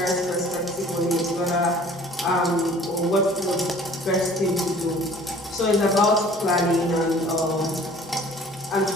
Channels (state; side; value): normal; both; correlation 0.50